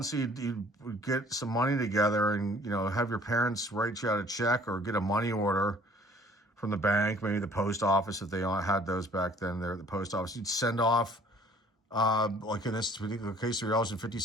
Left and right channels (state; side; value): normal; both; correlation 0.54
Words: so you'd get some money together and, have your parents write you out a check or get a money order from the bank, maybe the post office, if they had those back then. They're the post office. You'd send off, like in this particular case,